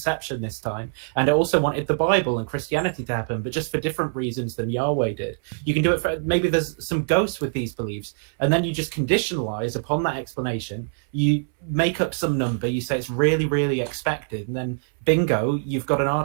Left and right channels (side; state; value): left; silent; 63 dB below the other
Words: this time. And it also wanted the Bible and Christianity to happen, but just for different reasons than Yahweh did. You can do it for, maybe there's some ghosts with these beliefs, and then you just conditionalize upon that explanation. You make up some number, you say it's really, really expected, and then bingo, you've got an